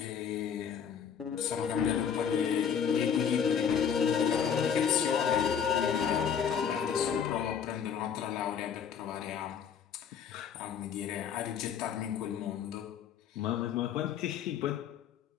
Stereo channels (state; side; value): quieter; right; 7.7 dB